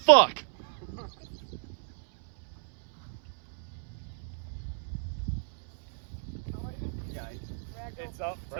It's up to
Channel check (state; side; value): silent; left; 57 dB below the other